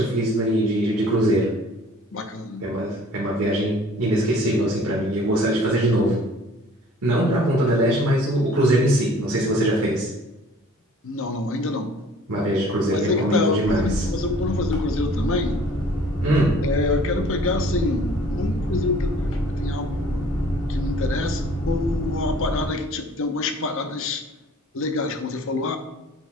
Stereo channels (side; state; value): both; normal; correlation 0.52